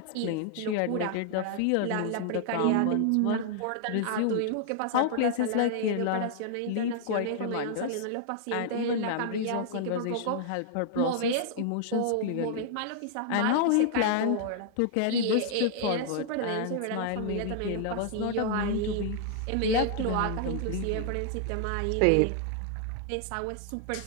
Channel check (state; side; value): different; both; correlation -0.01